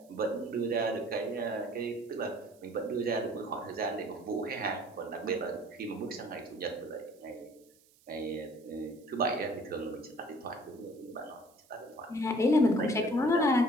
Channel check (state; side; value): noise; right; hiss, 30 dB below the sound